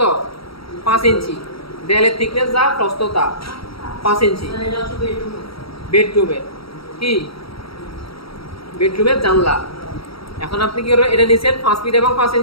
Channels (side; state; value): right; late; 0.75 ms